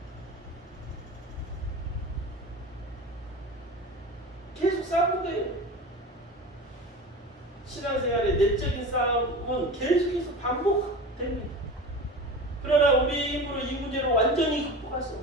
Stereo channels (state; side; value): normal; both; correlation 0.32